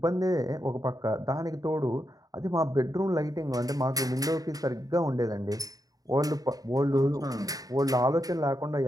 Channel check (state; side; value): late; left; 0.18 ms